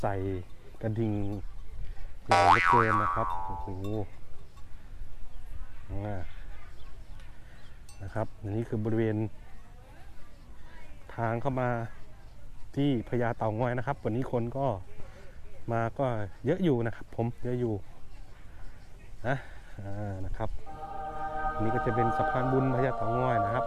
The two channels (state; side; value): identical; both; correlation 1.00